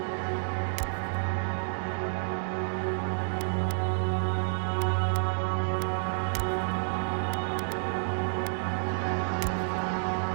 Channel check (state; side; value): silent; left; digital silence